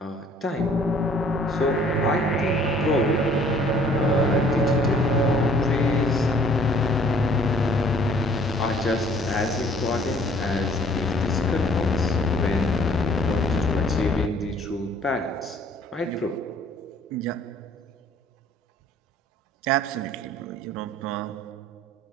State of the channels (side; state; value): both; normal; correlation 0.56